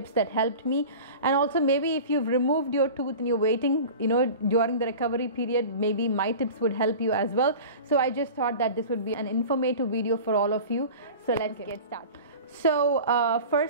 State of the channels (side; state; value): both; inverted; correlation -0.36